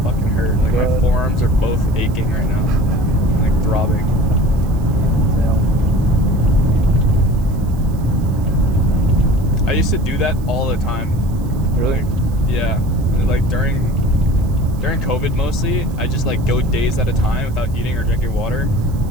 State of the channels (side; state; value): right; noise; hiss, 26 dB below the sound